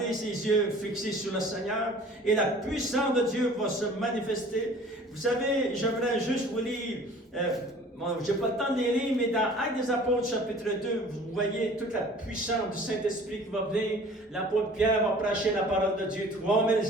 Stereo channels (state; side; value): normal; both; correlation 0.48